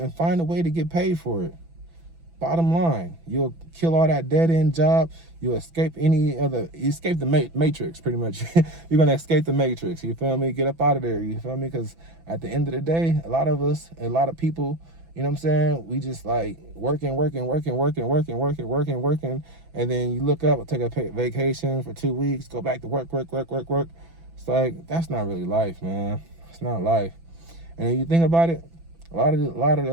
find a way to get paid for it. Bottom line, you'll kill all that dead-end job. You'll escape the matrix, pretty much. You're going to escape the matrix. You feel me? Get up out of there. You feel me? Because at the end of the day, a lot of people, you know what I'm saying? We just like working. And then you look up, take a vacation for 2 weeks, go back to work. It's like, that's not really life, man. It's not life. And if you think about it, a lot of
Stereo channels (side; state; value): left; late; 6.0 ms